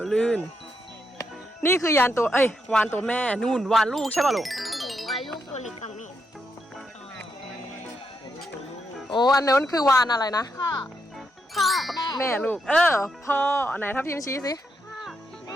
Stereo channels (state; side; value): normal; both; correlation 0.81